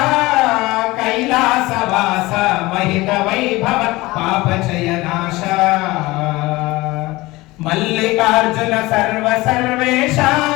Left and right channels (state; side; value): quieter; right; 20.5 dB